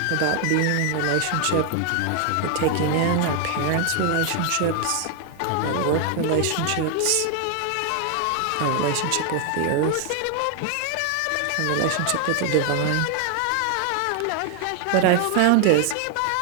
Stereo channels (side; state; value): both; different; correlation 0.00